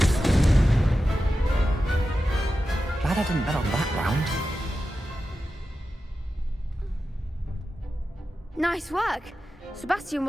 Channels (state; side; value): normal; both; correlation 0.92